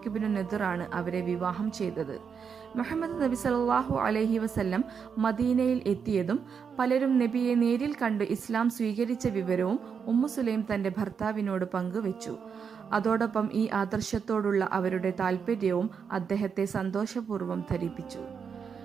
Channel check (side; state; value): left; quieter; 6.5 dB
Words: ഇബ്നു നദിറാണ് അവരെ വിവാഹം ചെയ്തത്. മുഹമ്മദ് നബി സല്ലല്ലാഹു അലൈഹി വസല്ലം മദീനയിൽ എത്തിയതും പലരും നബിയെ നേരിൽ കണ്ട് ഇസ്ലാം സ്വീകരിച്ച വിവരവും ഉമ്മു സുലൈം തന്റെ ഭർത്താവിനോട് പങ്കുവച്ചു. അതോടൊപ്പം ഈ ആദർശത്തോടുള്ള അവരുടെ താല്പര്യവും അദ്ദേഹത്തെ സന്തോഷപൂർവ്വം ധരിപ്പിച്ചു.